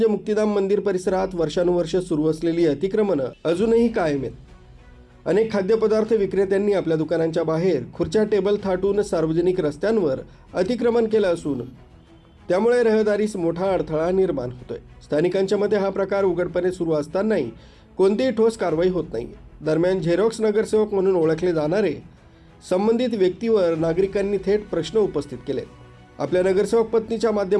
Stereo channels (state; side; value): identical; both; correlation 1.00